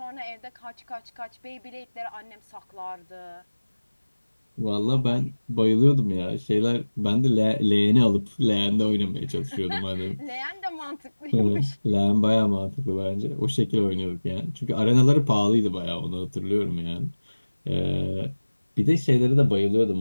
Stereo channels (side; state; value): both; inverted; correlation -1.00